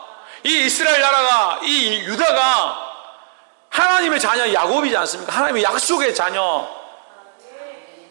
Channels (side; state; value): left; silent; 66 dB below the other